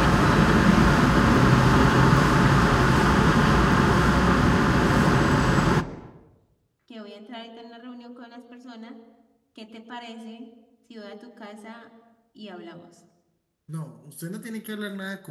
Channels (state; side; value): identical; both; correlation 1.00